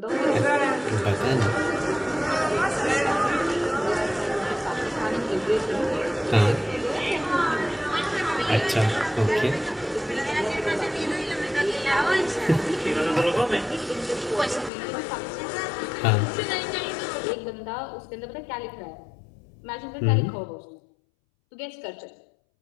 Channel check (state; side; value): drops out; right; at 14.7 s